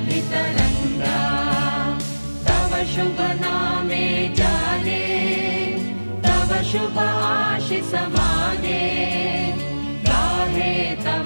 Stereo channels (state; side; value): inverted; both; correlation -1.00